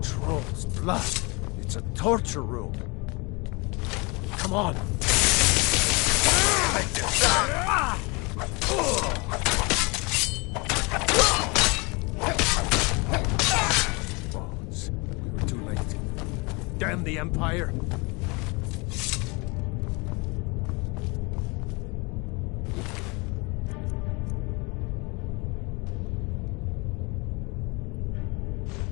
Troll's blood. It's a torture room. Come on. Bones. We were too late. Damn the Empire.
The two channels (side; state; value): right; quieter; 28.1 dB